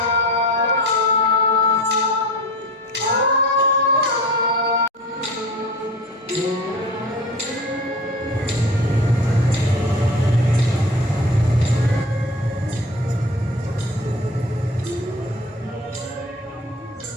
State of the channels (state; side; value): normal; both; correlation 0.37